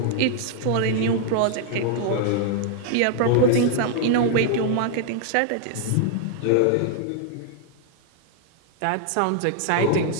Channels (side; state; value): both; different; correlation 0.00